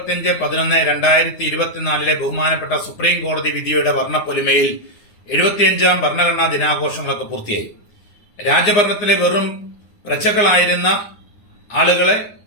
ബഹുമാനപ്പെട്ട സുപ്രീം കോടതി വിധിയുടെ വർണ്ണപ്പൊലിമയിൽ 75ാം ഭരണഘടനാ ദിനാഘോഷങ്ങളൊക്കെ പൂർത്തിയായി. രാജഭരണത്തിലെ വെറും പ്രജകളായിരുന്ന ആളുകളെ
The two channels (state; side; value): late; right; 9.7 ms